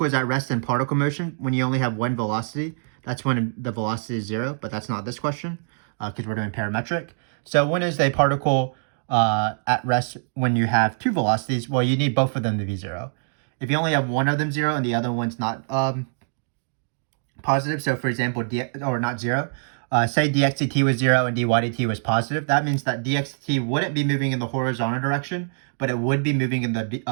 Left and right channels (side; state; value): left; silent; digital silence